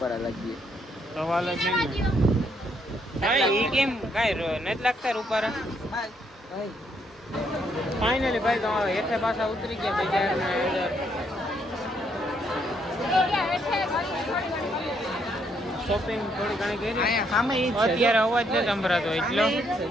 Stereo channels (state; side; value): normal; both; correlation 0.73